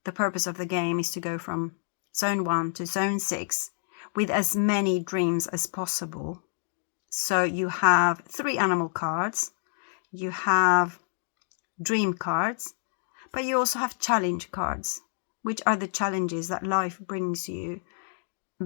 the purpose of the game is to go from zone 1 to zone 6 with as many dreams as possible. So you have 3 animal cards, you have dream cards, but you also have challenge cards, which are the challenges that life brings you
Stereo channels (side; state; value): right; silent; digital silence